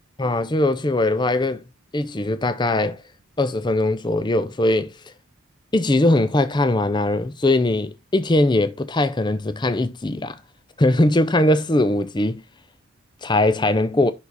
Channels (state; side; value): normal; both; correlation 0.70